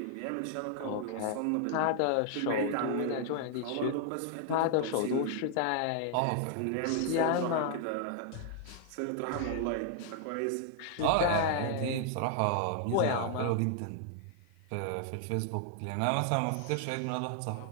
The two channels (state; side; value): different; both; correlation 0.00